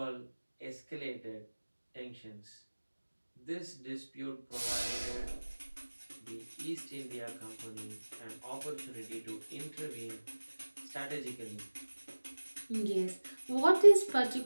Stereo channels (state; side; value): inverted; both; correlation -1.00